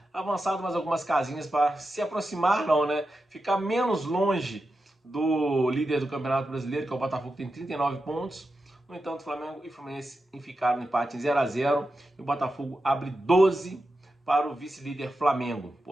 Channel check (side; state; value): both; normal; correlation 0.90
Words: avançado mais algumas casinhas para se aproximar, não, né? Ficar menos longe do líder do Campeonato Brasileiro, que é o Botafogo, que tem 39 pontos. No entanto, Flamengo e Fluminense ficaram no empate em 0-0 e o Botafogo abre 12 para o vice-líder Flamengo.